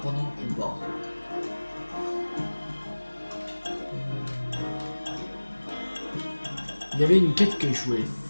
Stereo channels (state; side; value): inverted; both; correlation -1.00